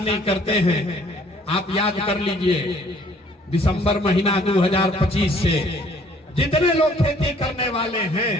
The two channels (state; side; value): normal; both; correlation 0.59